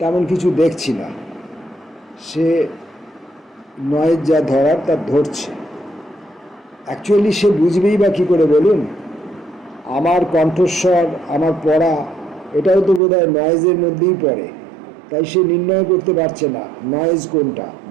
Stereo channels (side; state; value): left; drops out; at 13.0 s